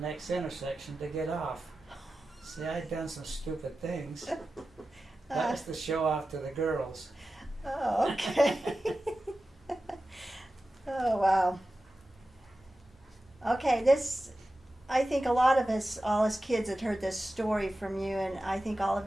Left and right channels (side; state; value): both; normal; correlation 0.94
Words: next intersection to get off. See, I'd done some stupid things. That was to show off to the girls. Oh, okay. Oh, wow. Okay, I think a lot of us, all us kids, had heard this story from you, and I think all of